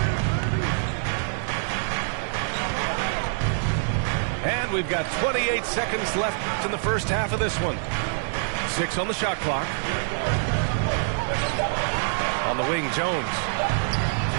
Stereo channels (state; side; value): silent; left; digital silence